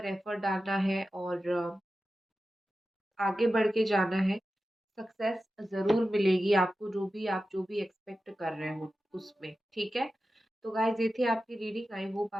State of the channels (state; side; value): normal; both; correlation 0.93